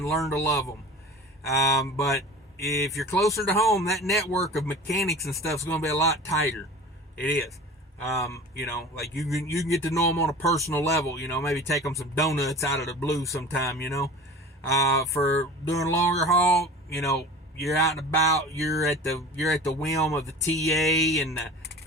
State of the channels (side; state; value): both; normal; correlation 0.38